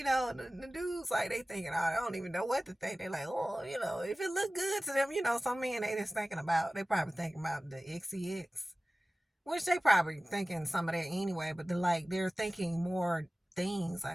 dudes, like, they thinking, oh, I don't even know what to think. They like, oh, if it look good to them, some men they just thinking about, they probably thinking about the XCX. Which they probably thinking some of that anyway, but they're thinking more things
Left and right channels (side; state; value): both; normal; correlation 0.97